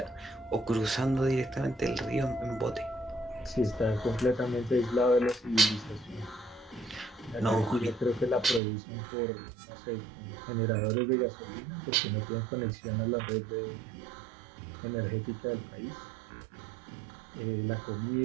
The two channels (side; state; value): left; drops out; at 8.6 s